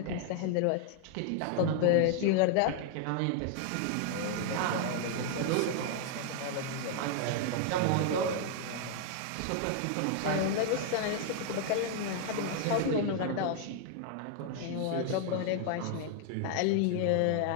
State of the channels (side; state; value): both; different; correlation 0.00